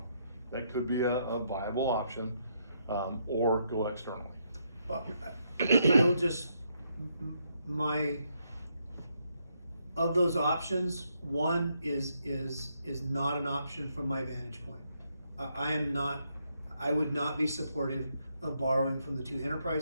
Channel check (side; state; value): both; inverted; correlation -0.76